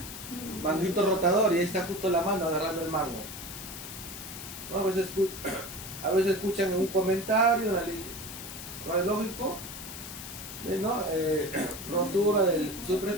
manguito rotador, y ahí está justo la mano agarrando el mango. ¿No? A veces escuchan en un comentario radiológico, ¿no? Rotura del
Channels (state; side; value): noise; left; hiss, 10 dB below the sound